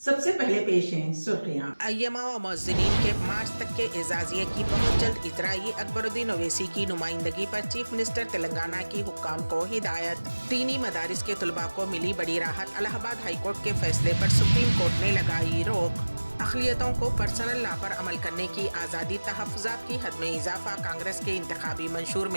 पहले पेश हैं सुर्खियां। अय्यमा व मुअज़्ज़िनीन के मार्च तक के एजाज़िये की बहुत जल्द इजराई। अकबरुद्दीन ओवैसी की नुमाइंदगी पर चीफ मिनिस्टर तेलंगाना की हुक्काम को हिदायत। दीनी मदारिस के तलबा को मिली बड़ी राहत। इलाहाबाद हाई कोर्ट के फैसले पर सुप्रीम कोर्ट ने लगाई रोक। अक़लियतों को पर्सनल लॉ पर अमल करने की आज़ादी, तहफ़्फ़ुज़ात की हद में इजाफा। कांग्रेस के इंतखाबी मंशूर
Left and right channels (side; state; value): both; inverted; correlation -1.00